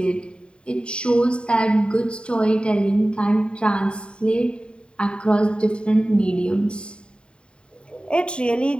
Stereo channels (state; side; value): late; right; 0.053 ms